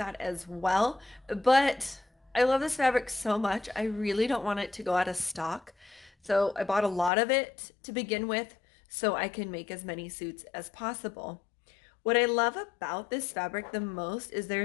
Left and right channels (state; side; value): drops out; right; at 7.1 s